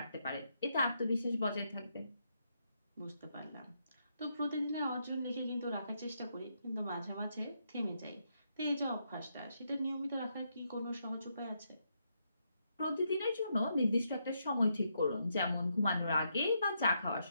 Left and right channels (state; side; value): inverted; both; correlation -0.79